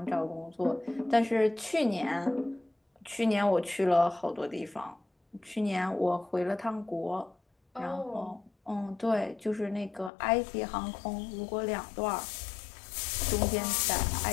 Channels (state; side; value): drops out; right; at 10.1 s